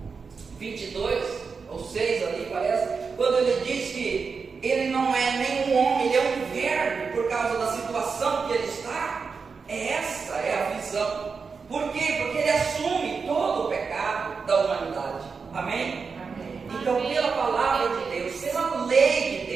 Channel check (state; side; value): quieter; left; 5.2 dB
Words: 22, ou 6 ali parece, quando ele diz que ele não é nem um homem, ele é um verbo por causa da situação que ele está. Essa é a visão. Por quê? Porque ele assume todo o pecado da humanidade. Amém? Então, pela palavra de Deus, pela lei de